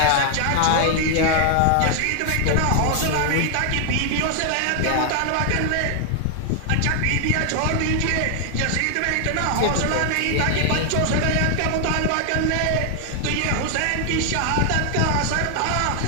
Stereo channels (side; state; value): both; different; correlation 0.00